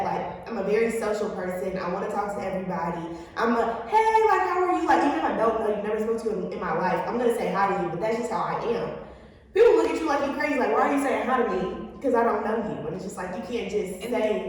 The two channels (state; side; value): identical; both; correlation 1.00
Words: Like, I'm a very social person. I want to talk to everybody. I'm a, hey, like, how are you? Like, even if I don't know you, never spoke to you in my life, I'm going to say hi to you, but that's just how I am. People look at you like you're crazy. Like, why are you saying hi to me? Because I don't know you. And it's just like, you can't just say